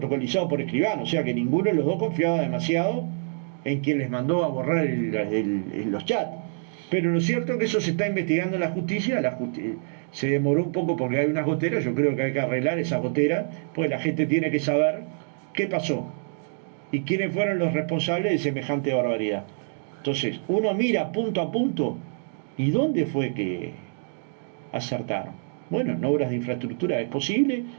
por Escribano, o sea que ninguno de los dos confiaba demasiado en quien les mandó a borrar los chats. Pero lo cierto es que eso se está investigando en la justicia, se demoró un poco porque hay unas goteras, yo creo que hay que arreglar esas goteras, pues la gente tiene que saber qué pasó y quiénes fueron los responsables de semejante barbaridad. Entonces, uno mira punto a punto y dónde fue que acertaron. Bueno, en obras de infraestructura es posible,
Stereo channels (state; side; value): silent; left; digital silence